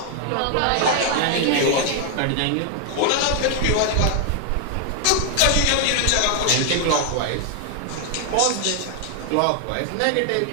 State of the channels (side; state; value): both; different; correlation 0.00